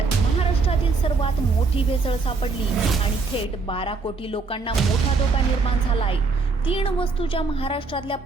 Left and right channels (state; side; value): quieter; left; 4.3 dB